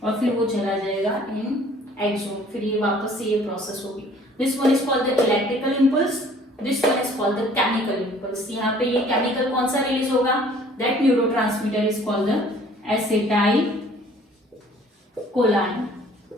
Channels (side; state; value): both; normal; correlation 0.54